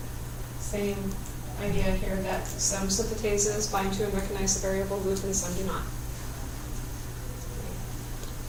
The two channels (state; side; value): identical; both; correlation 1.00